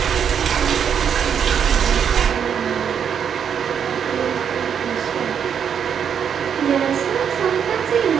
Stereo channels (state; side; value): quieter; left; 7.8 dB